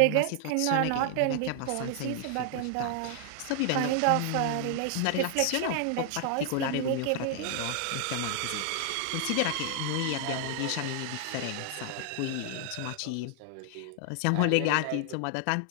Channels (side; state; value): both; different; correlation 0.00